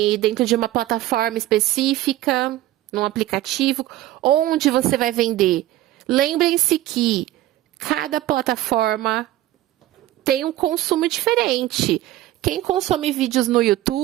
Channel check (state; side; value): quieter; left; 15.1 dB